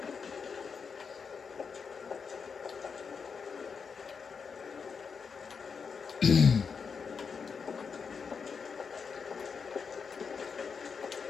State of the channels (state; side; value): quieter; right; 5.8 dB